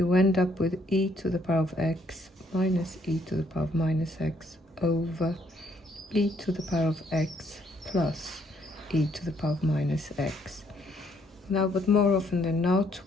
end up with e to the power of x minus e to the power of minus x over e to the power of x plus e to the power of minus x. Now, but more often than not,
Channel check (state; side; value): normal; both; correlation 0.69